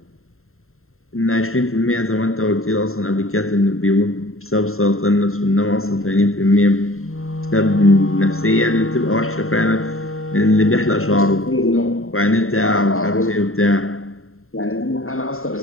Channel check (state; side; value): late; right; 0.62 ms